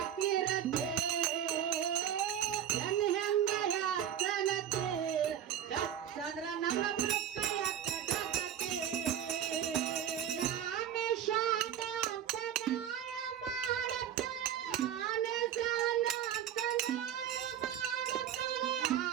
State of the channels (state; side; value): quieter; left; 9.9 dB